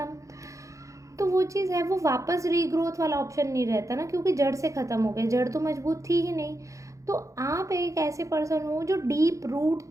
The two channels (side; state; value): left; late; 0.15 ms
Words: तो वो चीज़ है, वो वापस रीग्रोथ वाला ऑप्शन नहीं रहता ना, क्योंकि जड़ से ख़त्म हो गए, जड़ तो मजबूत थी ही नहीं। तो आप एक ऐसे पर्सन हो जो डीप रूट